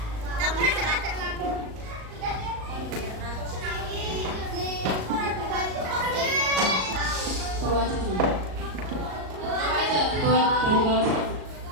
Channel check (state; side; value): late; left; 37 ms